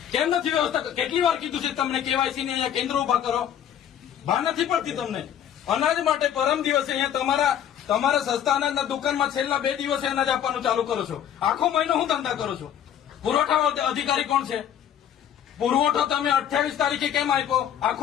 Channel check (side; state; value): right; quieter; 9.9 dB